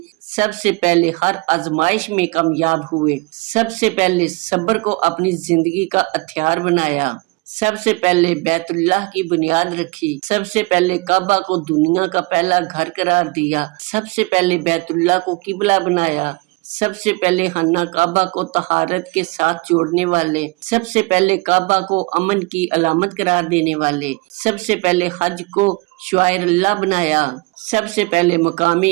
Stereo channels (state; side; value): quieter; left; 25.6 dB